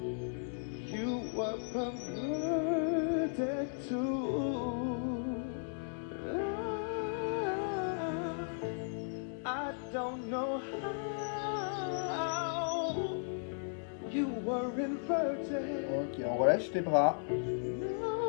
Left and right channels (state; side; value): silent; right; digital silence